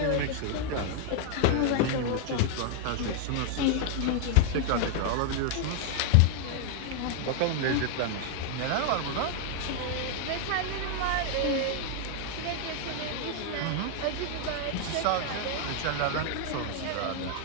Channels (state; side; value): different; both; correlation 0.00